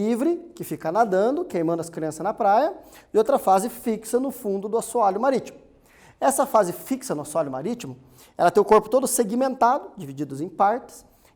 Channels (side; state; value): both; identical; correlation 1.00